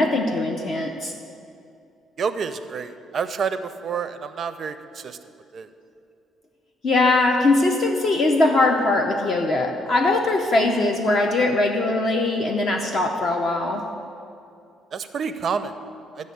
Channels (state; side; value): normal; both; correlation 0.71